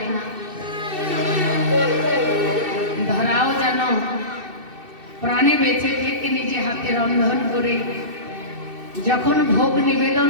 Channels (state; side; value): late; left; 2.6 ms